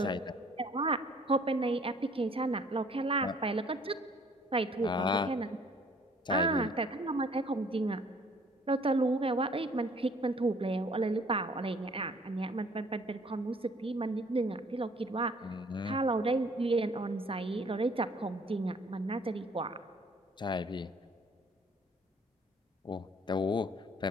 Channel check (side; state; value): both; normal; correlation 0.57